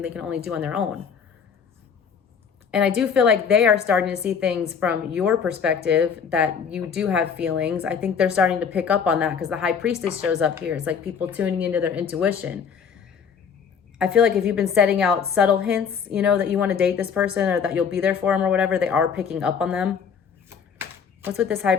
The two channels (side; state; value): right; quieter; 6.8 dB